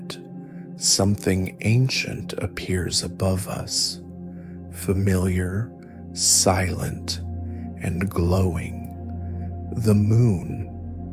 something ancient appears above us, familiar, silent, and glowing. The moon.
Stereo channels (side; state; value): both; identical; correlation 1.00